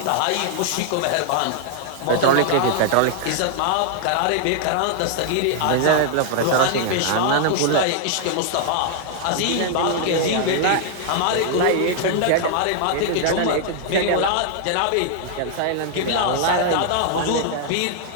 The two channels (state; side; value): different; both; correlation 0.00